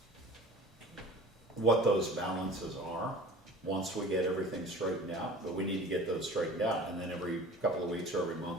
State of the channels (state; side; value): normal; both; correlation 0.42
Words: what those balances are once we get everything straightened out, but we need to get those straightened out, and then every couple of weeks or every